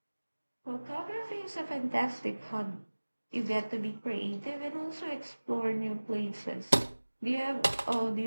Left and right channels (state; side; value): inverted; both; correlation -1.00